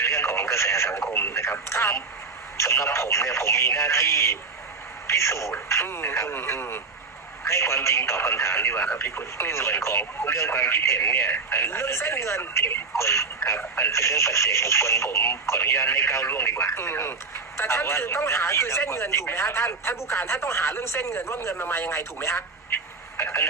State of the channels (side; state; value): left; quieter; 4.4 dB